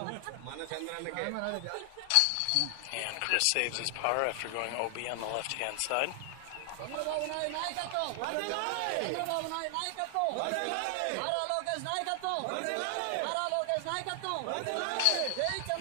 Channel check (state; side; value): different; both; correlation 0.00